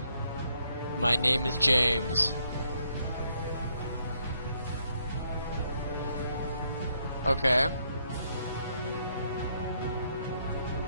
My name is James. Okay.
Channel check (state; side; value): inverted; both; correlation -0.73